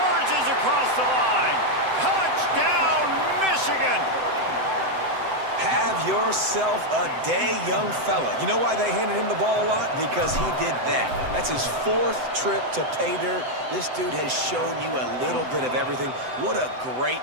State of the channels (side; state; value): left; late; 7.9 ms